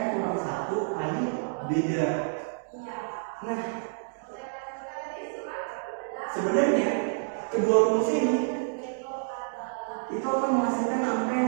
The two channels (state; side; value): silent; left; digital silence